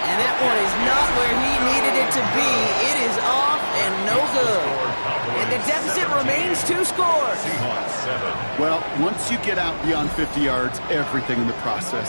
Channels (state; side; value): inverted; both; correlation -1.00